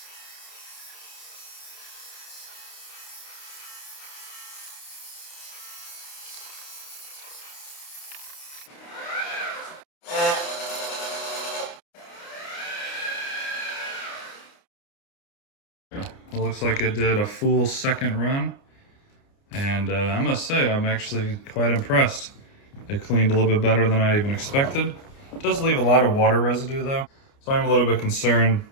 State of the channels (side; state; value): right; late; 29 ms